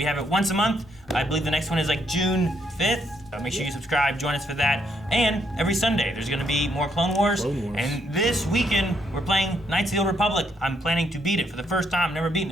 have it once a month. I believe the next one is June 5th. Make sure you subscribe, join us for that. And every Sunday, there's going to be more Clone Wars. And this weekend, we're playing Knights of the Old Republic. I'm planning to beat it for the first time. Never beaten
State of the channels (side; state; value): both; normal; correlation 0.74